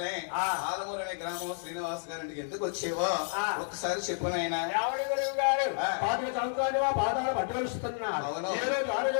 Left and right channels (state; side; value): silent; right; digital silence